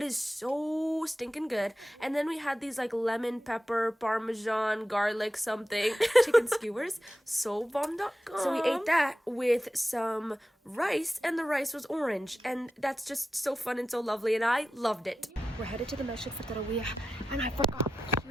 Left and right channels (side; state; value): both; normal; correlation 0.92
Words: it's so stinking good. And then we had these like lemon, pepper, parmesan, garlic something, chicken skewers. So bomb.com. So we ate that with some rice, and the rice was orange, and that's just so fun and so lovely, and I loved it. We're headed to the masjid for taraweeh, and I forgot,